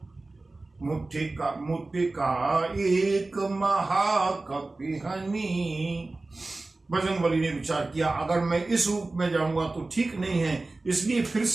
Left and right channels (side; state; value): left; quieter; 3.2 dB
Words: मुझे का एक महाकपि हनी। बजरंगबली ने विचार किया, अगर मैं इस रूप में जाऊंगा तो ठीक नहीं है, इसलिए फिर